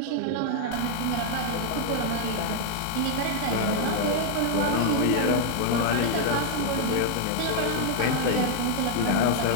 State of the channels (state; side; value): different; both; correlation 0.00